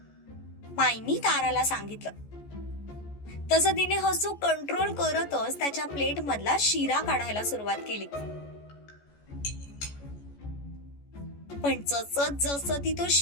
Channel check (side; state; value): right; late; 14 ms